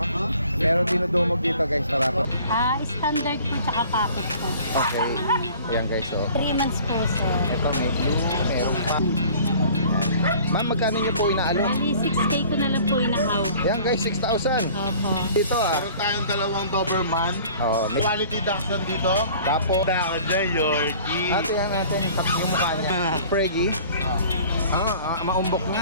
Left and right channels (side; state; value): both; inverted; correlation -0.49